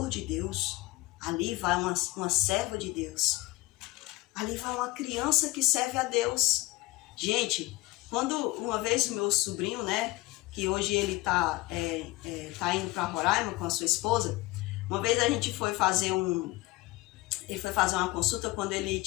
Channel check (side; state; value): right; quieter; 20.6 dB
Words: de Deus, ali vai uma serva de Deus, ali vai uma criança que serve a Deus. Gente, quando uma vez meu sobrinho, né, que hoje ele tá indo para Roraima com a sua esposa, Uma vez a gente foi fazer ele foi fazer uma consulta quando ele